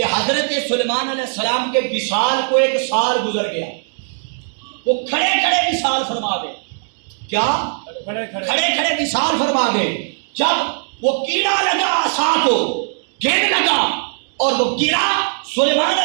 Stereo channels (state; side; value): silent; left; digital silence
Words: حضرت سلیمان علیہ السلام کے وصال کو 1 سال گزر گیا. وہ کھڑے کھڑے وصال فرما گئے. کیا؟ کھڑے کھڑے وصال فرما گئے. جب وہ کیڑا لگا عصا کو، گیند لگا اور وہ گرا، سلیمان